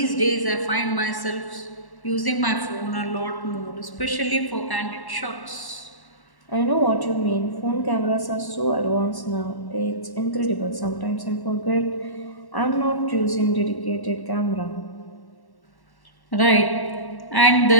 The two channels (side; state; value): right; late; 1.1 ms